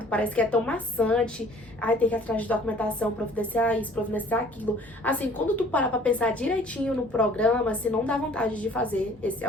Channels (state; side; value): normal; both; correlation 0.52